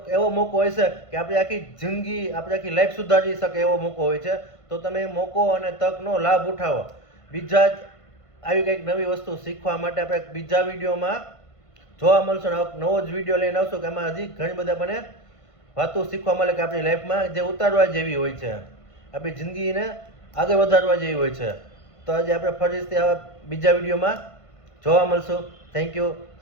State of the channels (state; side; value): late; right; 1.5 ms